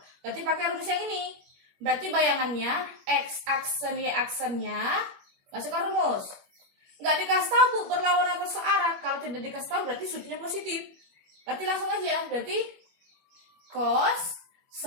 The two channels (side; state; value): left; late; 21 ms